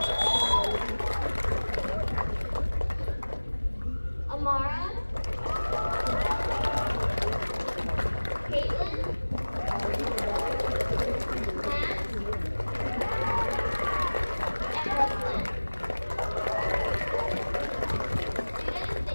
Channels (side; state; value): both; inverted; correlation -1.00